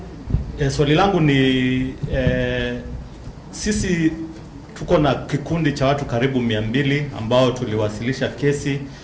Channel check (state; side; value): identical; both; correlation 1.00